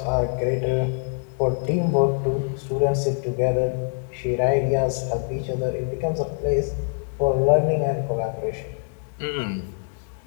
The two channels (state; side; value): silent; right; 62 dB below the other